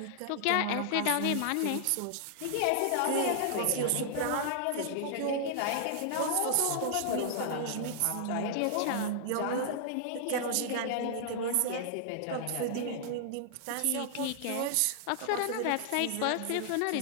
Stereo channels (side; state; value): both; different; correlation -0.01